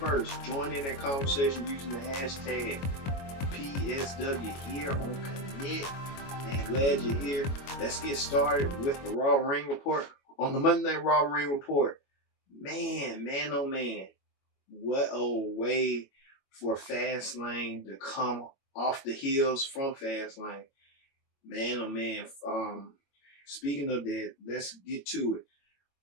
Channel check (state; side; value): late; right; 22 ms